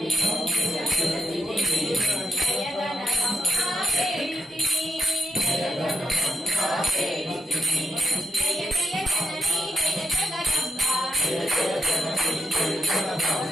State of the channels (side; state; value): both; normal; correlation 0.84